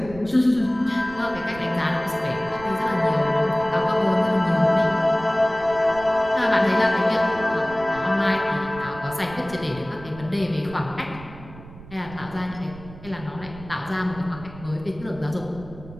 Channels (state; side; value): noise; right; rumble, 17 dB below the sound